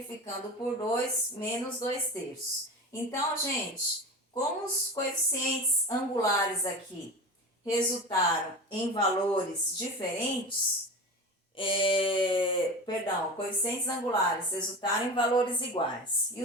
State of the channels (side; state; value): both; normal; correlation 0.29